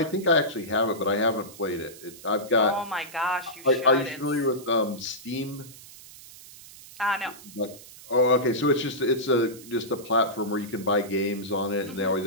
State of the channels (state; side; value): noise; right; hiss, 18 dB below the sound